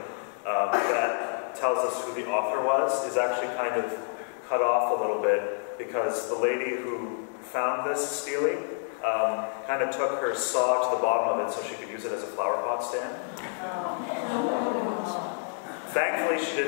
that tells us who the author was is actually kind of cut off a little bit, because the lady who found this stele kind of took her saw to the bottom of it so she could use it as a flower pot stand. Thankfully, she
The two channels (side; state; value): right; silent; 59 dB below the other